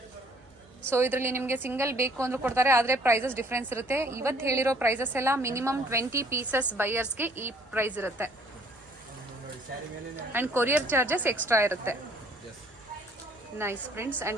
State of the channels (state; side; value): noise; right; hum, 30 dB below the sound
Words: ಸೊ ಇದರಲ್ಲಿ ನಿಮಗೆ ಸಿಂಗಲ್ ಬೇಕು ಅಂದ್ರೂ ಕೊಡ್ತಾರೆ, ಆದರೆ ಪ್ರೈಸಸ್ ಡಿಫ್ರೆನ್ಸ್ ಇರುತ್ತೆ. ಇವತ್ತು ಹೇಳಿರೋ ಪ್ರೈಸಸ್ ಎಲ್ಲ ಮಿನಿಮಮ್ 20 ಪೀಸಸ್ ಬೈಯರ್ಸ್ಗೆ ಈ ಪ್ರೈಸ್ ಇರುತ್ತೆ. ಅಂಡ್ ಕೊರಿಯರ್ ಚಾರ್ಜಸ್ ಎಕ್ಸ್ಟ್ರಾ ಇರುತ್ತೆ. ನೈಸ್ ಪ್ರಿಂಟ್ಸ್